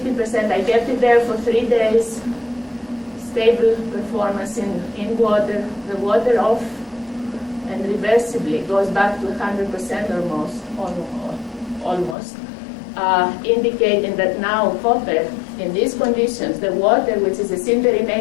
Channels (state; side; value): drops out; right; at 12.2 s